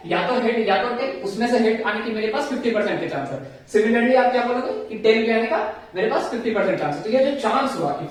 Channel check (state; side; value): identical; both; correlation 1.00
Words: या तो हेड या तो टेल। उसमें से हेड आने की मेरे पास 50% के चांस है। सिमिलरली आप क्या बोलोगे कि टेल भी आने का मेरे पास 50% चांस है। तो ये जो चांस हुआ कि